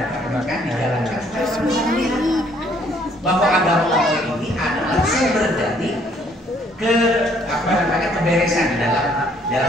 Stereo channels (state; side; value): normal; both; correlation 0.64